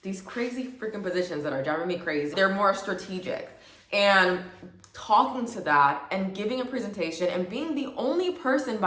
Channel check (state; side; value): identical; both; correlation 1.00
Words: these crazy freaking positions that are driving me crazy. They're more strategic. And talking to that and giving a presentation and being the only person,